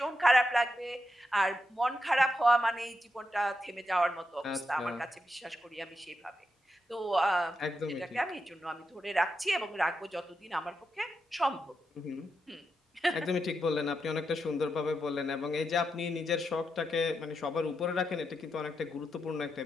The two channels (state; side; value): normal; both; correlation 0.85